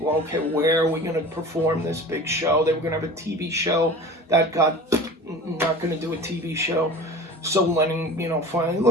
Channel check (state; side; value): normal; both; correlation 0.38